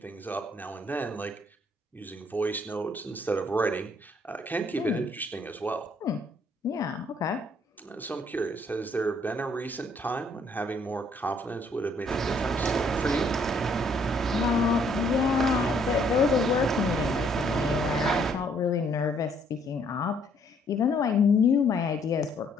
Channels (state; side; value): normal; both; correlation 0.66